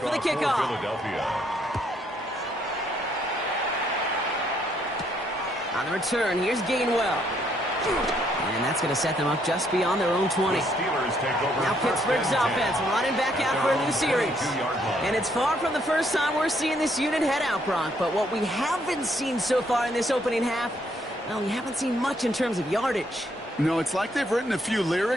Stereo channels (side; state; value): both; normal; correlation 0.70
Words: for the kickoff. On the return, here's Gainwell. And that's going to set them up just beyond their own 20. Now Pittsburgh's offense running back out for a new series. And it's far from the first time we're seeing this unit head out, Brock. But what we haven't seen so far in this opening half, well, we haven't seen much in terms of yardage. No, it's like they've written a few